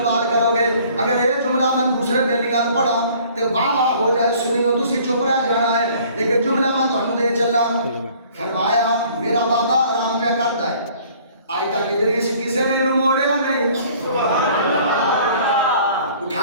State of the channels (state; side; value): inverted; both; correlation -0.54